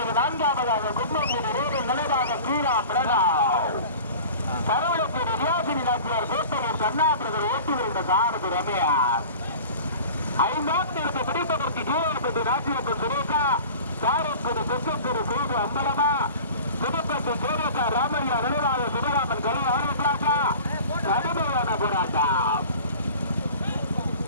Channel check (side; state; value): both; inverted; correlation -0.40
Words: நான்காவதாக கும்பங்குடி ரோடு நிலைவாக கீழா பிரணாவ் கடவுளுக்கு ரியாசினி நாச்சியார் கோட்டையூர் கண்ணாபிரதர் ஓட்டி வருகின்ற சாரதி ரமேஷ் ஐந்தாம் தேதி பிடிப்பதற்கு கீழே ராஜ்யப்பன் சுரேகா சாரக்குடி தெற்கத்தூர் சேது அம்பலமா புதுப்பட்டி சேரக்கா ராமையா நினைவாக சிவராமன் கலை ஆரம்பிக்கலாக்கா கடுமையான போராட்டம்